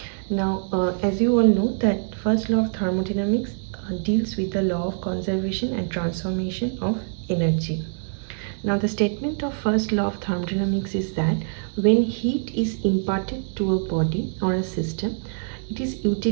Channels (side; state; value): left; silent; digital silence